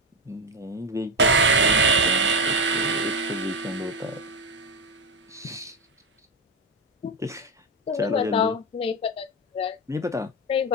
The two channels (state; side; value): normal; both; correlation 0.12